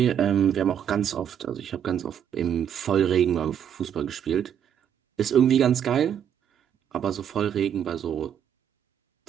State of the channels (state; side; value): quieter; left; 9.0 dB